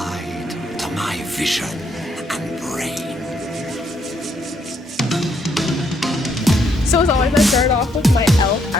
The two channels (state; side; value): normal; both; correlation 0.73